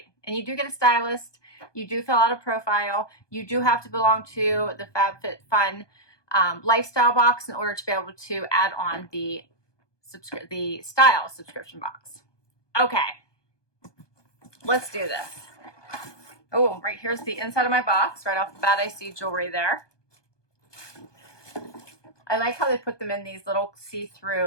and you do get a stylist. You do fill out a profile. You do have to belong to the FabFitFun lifestyle box in order to be able to add on the style subscription box. Okay, let's do this. Oh, right here's the inside of my box. Right off the bat, I see jewelry there. I like how they put them in these little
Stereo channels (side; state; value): right; late; 1.2 ms